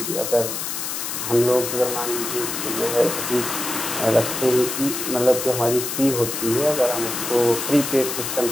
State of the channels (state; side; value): noise; left; hiss, 4 dB below the sound